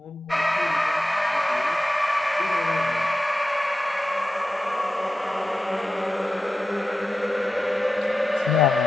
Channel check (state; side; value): normal; both; correlation 0.92